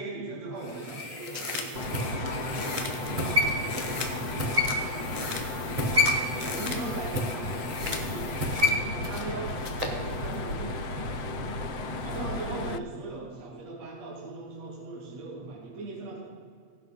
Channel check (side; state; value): left; late; 8.3 ms